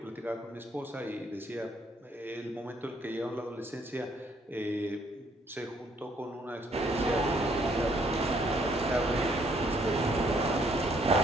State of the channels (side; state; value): both; normal; correlation 0.67